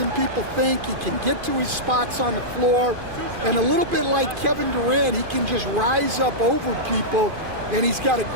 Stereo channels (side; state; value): left; late; 2.5 ms